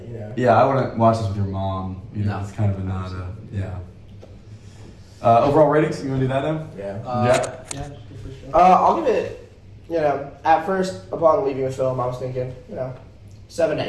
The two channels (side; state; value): both; identical; correlation 1.00